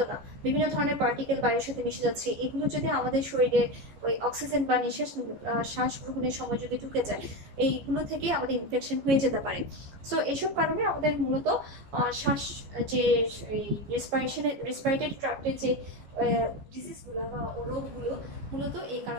না। বিভিন্ন ধরনের পার্টিকেল বায়ুর সাথে মিশে যাচ্ছে। এগুলো যদি আমাদের শরীরে ওই অক্সিজেন বা শ্বাস গ্রহণের সময় যদি ঢুকে যায়, এইগুলো থেকে আমাদের ইনফেকশন হয়ে যেতে পারে। সো এইসব কারণে আমাদের মূলত শ্বাস যে রেসপিরেটরি ট্র্যাক্টের যে ডিজিজগুলো বা রোগগুলো মূলত এই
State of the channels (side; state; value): left; late; 14 ms